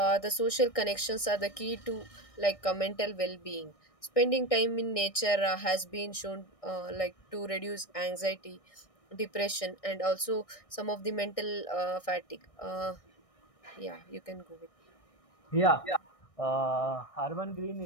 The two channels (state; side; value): late; right; 1.6 ms